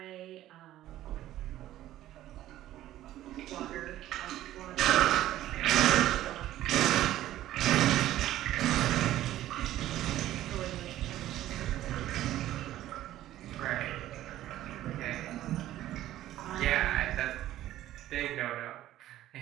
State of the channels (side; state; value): left; quieter; 13.8 dB